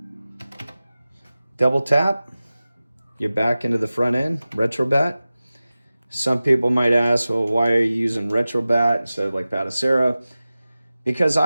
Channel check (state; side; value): inverted; both; correlation -0.96